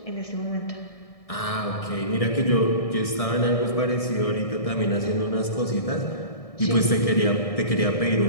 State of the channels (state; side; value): late; right; 1.6 ms